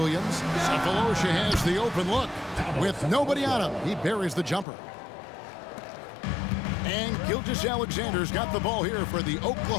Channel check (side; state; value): right; drops out; at 4.7 s